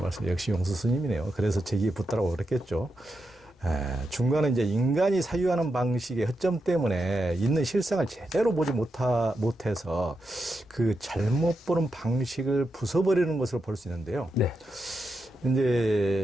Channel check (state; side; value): normal; both; correlation 0.86